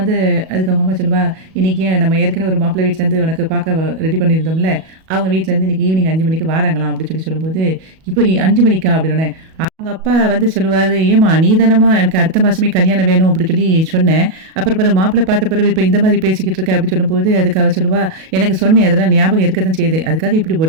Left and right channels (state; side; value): late; left; 37 ms